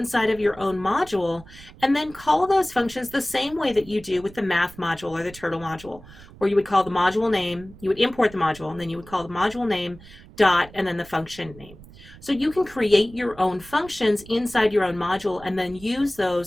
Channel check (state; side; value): noise; right; rumble, 20 dB below the sound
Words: of your own module and then call those functions the same way that you do with the math module or the turtle module, where you would call the module name, you would import the module, and then you would call the module name dot and then the function name. So you can create your own functions inside your own module and then use